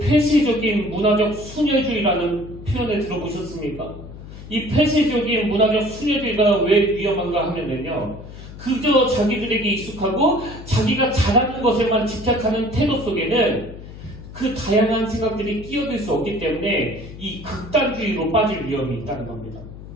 문화적 순혈주의라는 표현을 들어보셨습니까? 이 폐쇄적인 문화적 순혈주의가 왜 위험한가 하면은요, 그저 자기들에게 익숙하고 자기가 잘하는 것에만 집착하는 태도 속에는 그 다양한 생각들이 끼어들 수 없기 때문에 이 극단주의로 빠질 위험이 있다는 겁니다.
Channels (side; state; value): left; noise; hum, 14 dB below the sound